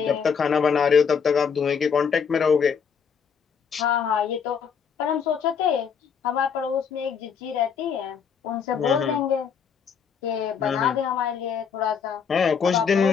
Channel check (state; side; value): quieter; right; 6.7 dB